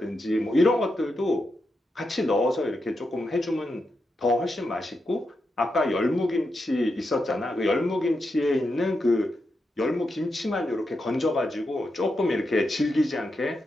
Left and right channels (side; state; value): both; normal; correlation 0.86